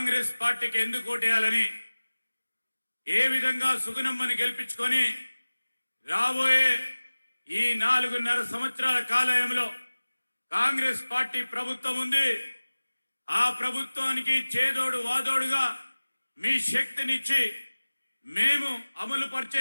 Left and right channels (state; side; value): inverted; both; correlation -1.00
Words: పార్టీకి ఎందుకు ఓటేయాలని, ఏ విధంగా సుగుణమ్మని గెలిపించుకొని రాబోయే ఈ 4.5 సంవత్సరాల కాలంలో కాంగ్రెస్ పార్టీ ప్రభుత్వం ఉంది. ఆ ప్రభుత్వానికి చేదోడు వాదోడుగా మీ శక్తినిచ్చి మేము అమలు